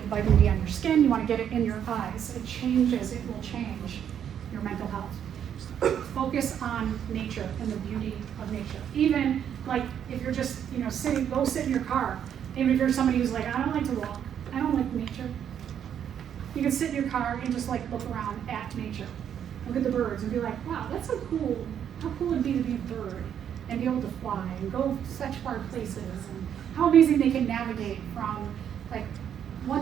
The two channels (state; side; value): quieter; left; 9.0 dB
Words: the vitamin D on your skin. You want to get it in your eyes. It will change your mental health. Focus on nature and the beauty of nature. Even like if you're just, go sit in your car. Even if you're somebody who's like, I don't like to walk. I don't like nature. You can sit in your car and just like look around at nature. Look at the birds and be like, wow, that's so cool. How cool would it be to be a bird and be able to fly and go such far places, and how amazing they can navigate from like